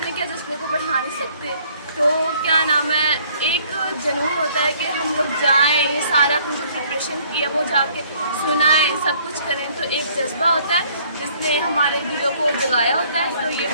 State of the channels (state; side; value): inverted; both; correlation -0.60